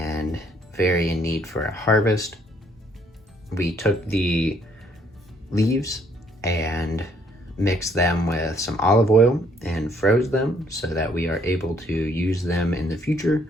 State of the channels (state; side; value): normal; both; correlation 0.65